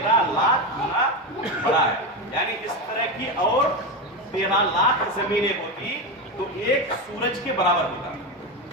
لاکھ گنا بڑا ہے. یعنی اس طرح کی اور 13 لاکھ زمینیں ہوتی تو ایک سورج کے برابر ہوتا.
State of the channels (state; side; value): normal; both; correlation 0.16